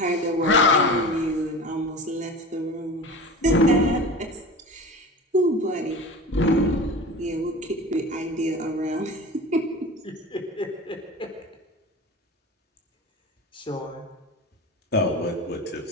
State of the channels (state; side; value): normal; both; correlation 0.34